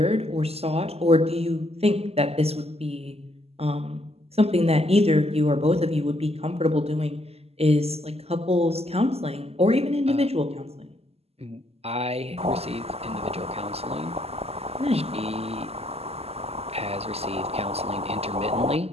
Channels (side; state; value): left; late; 0.29 ms